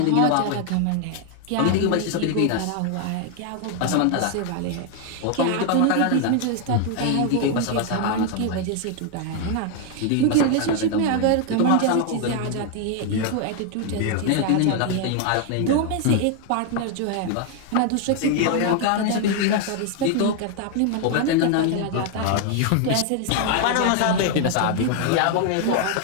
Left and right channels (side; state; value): both; different; correlation 0.01